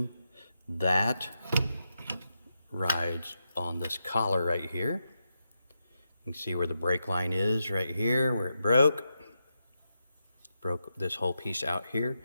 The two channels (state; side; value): inverted; both; correlation -0.86